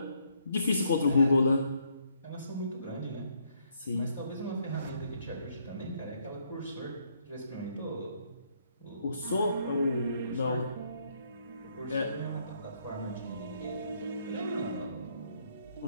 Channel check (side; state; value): both; inverted; correlation -0.71